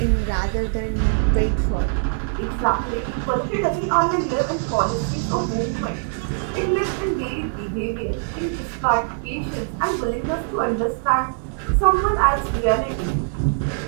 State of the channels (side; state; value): left; silent; digital silence